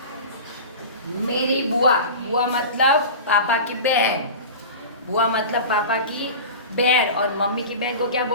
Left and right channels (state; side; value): inverted; both; correlation -0.33